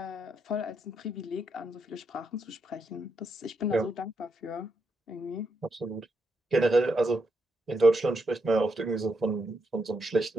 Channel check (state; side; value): normal; both; correlation 0.80